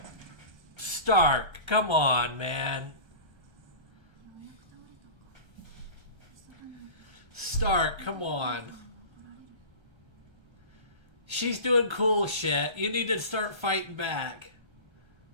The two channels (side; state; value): left; late; 1.3 ms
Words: Stark, come on, man. Stark, come on. She's doing cool shit. You need to start fighting back.